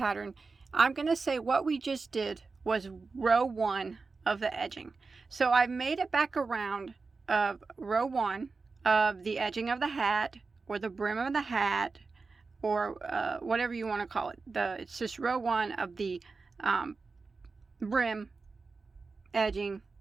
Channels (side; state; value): left; quieter; 4.3 dB